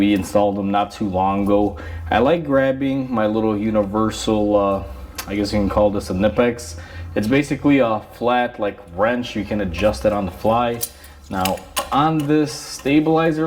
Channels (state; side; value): identical; both; correlation 1.00